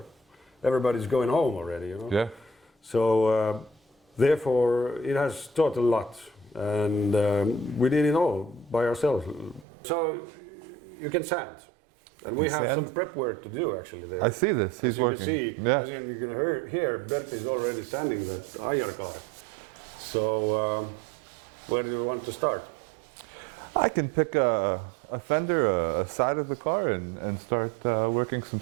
Everybody's going home already, you know. Yeah. So therefore, it has taught a lot, and we did it all by ourselves. So you can sand, and we have some prep work to do actually there. I see this. He's working. As you can hear, Bert is already standing that Aiar car. So where do you want to start? I can pick a fender, a side of the car, and start working some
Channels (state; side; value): drops out; left; at 9.7 s